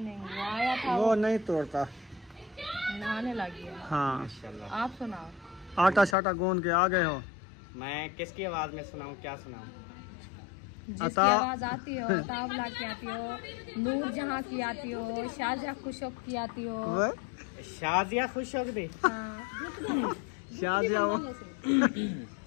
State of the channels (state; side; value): drops out; right; at 6.2 s